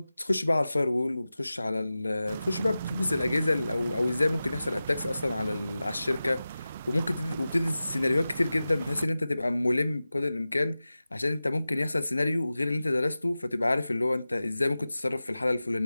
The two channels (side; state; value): both; inverted; correlation -0.95